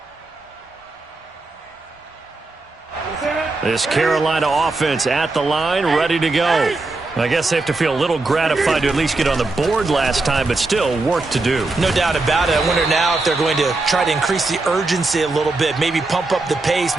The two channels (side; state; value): left; quieter; 3.3 dB